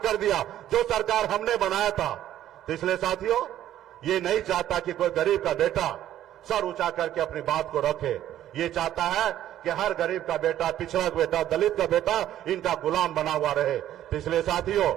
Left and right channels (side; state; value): left; quieter; 12.2 dB